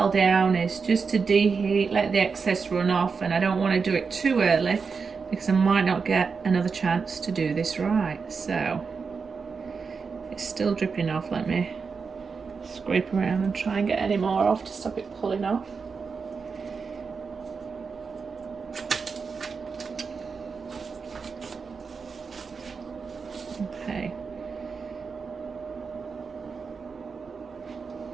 down is just to deheat, let the excess run off, and I don't want to do it too early because I might not get another chance to do this right. So it's still dripping off. Let me scrape around and try and get any more off to stop it pulling off. Okay.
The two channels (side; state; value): left; quieter; 5.3 dB